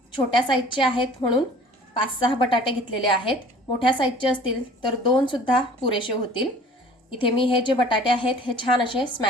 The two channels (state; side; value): normal; both; correlation 0.48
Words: छोट्या साईजचे आहेत म्हणून 5-6 बटाटे घेतलेले आहेत। मोठ्या साईजचे असतील तर 2 सुद्धा पुरेसे होतील। इथे मी हे जे बटाटे आहेत हे छान असे